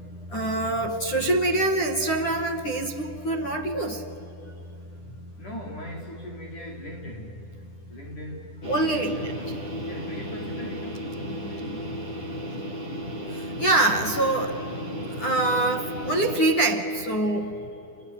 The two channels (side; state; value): right; late; 10 ms